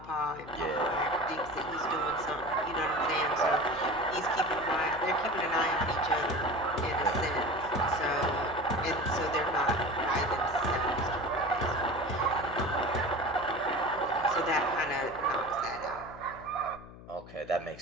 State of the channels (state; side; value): noise; left; hum, 17 dB below the sound